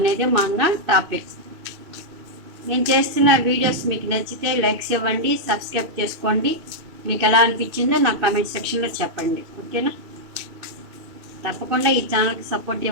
మన టాపిక్. నేను చేస్తున్న వీడియోస్ మీకు నచ్చితే లైక్స్ ఇవ్వండి, సబ్స్క్రైబ్ చేసుకోండి. మీకు ఎలా అనిపించిందో నాకు కామెంట్ సెక్షన్లో చెప్పండి. ఓకేనా? తప్పకుండా ఈ ఛానల్కి సపోర్ట్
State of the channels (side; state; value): left; late; 2.6 ms